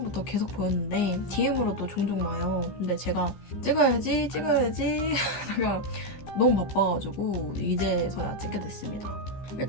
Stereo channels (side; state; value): right; late; 15 ms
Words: 계속 보였는데 DM으로도 종종 와요. 근데 제가 찍어야지 하다가 너무 바빠가지고 이제서야 찍게 됐습니다.